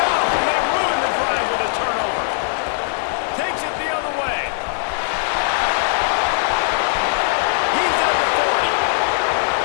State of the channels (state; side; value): silent; right; digital silence